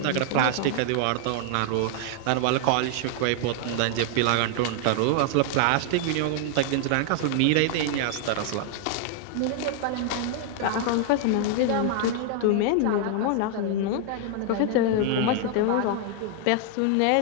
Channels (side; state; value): both; different; correlation 0.00